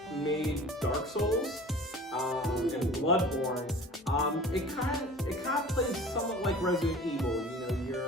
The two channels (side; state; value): both; normal; correlation 0.42